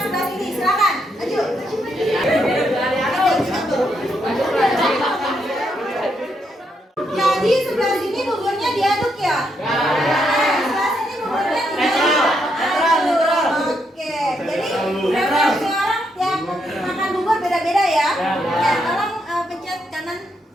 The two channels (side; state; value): both; normal; correlation 0.78